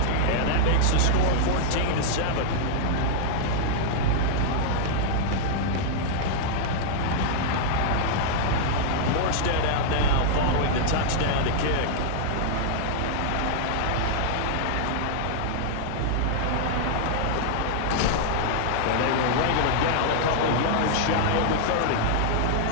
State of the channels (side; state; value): both; different; correlation -0.02